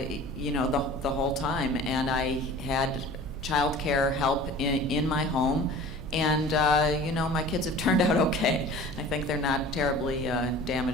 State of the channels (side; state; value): left; noise; hum, 20 dB below the sound